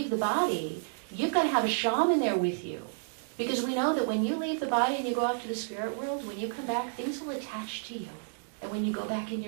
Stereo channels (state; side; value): silent; left; digital silence